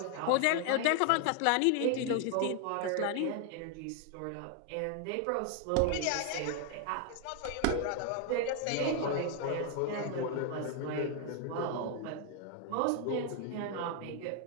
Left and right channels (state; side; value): different; both; correlation 0.00